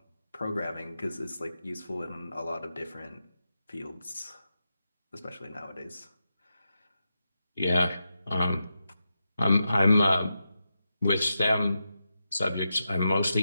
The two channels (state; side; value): inverted; both; correlation -0.88